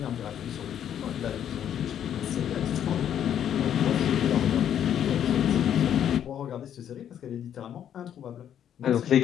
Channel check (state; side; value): quieter; right; 9.7 dB